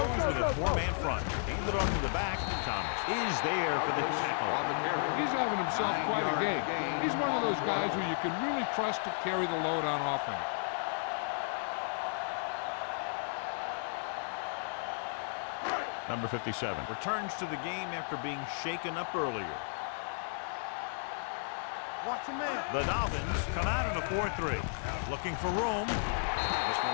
with a four-man front. Handed off to the back. Thomas is there for the tackle. He's having himself quite a game. He's one of those guys who you can really trust to carry the load on offense. Number 57 returns to the game after being shaken up earlier. Watch your man. The Dolphins come out in a 4-3. Looking for room. This one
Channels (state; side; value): silent; right; digital silence